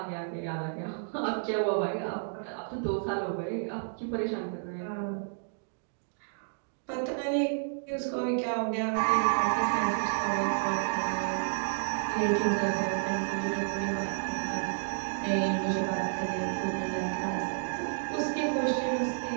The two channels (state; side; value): silent; left; digital silence